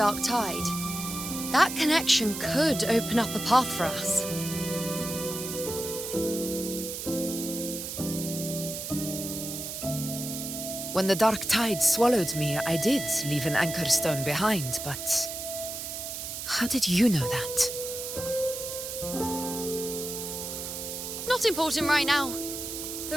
Tide, that connection could open up a path for us. When the Dark Tide swallowed me, I did leave an Anchorstone behind, but how did you know that? Not important right now.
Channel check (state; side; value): noise; right; hiss, 6 dB below the sound